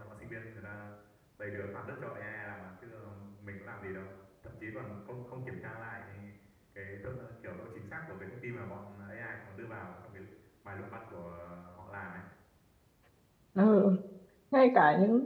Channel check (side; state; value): both; identical; correlation 1.00